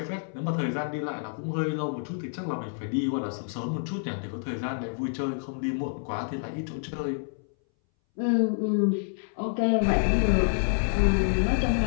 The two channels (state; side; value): silent; right; 59 dB below the other